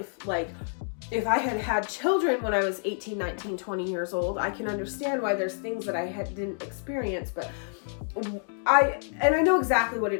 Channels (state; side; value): silent; right; 56 dB below the other